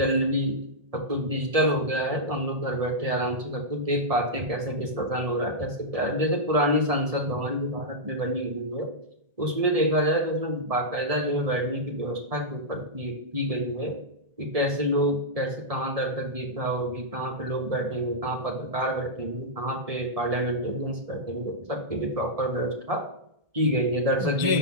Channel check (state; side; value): late; left; 1.7 ms